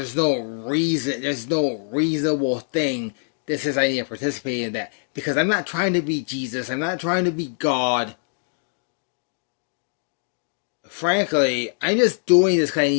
no reasonable thing that says I need to participate in that. Because I'm not trying to be Jesus. I'm not trying to be God. Frankly, I'm just doing this because I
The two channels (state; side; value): silent; right; digital silence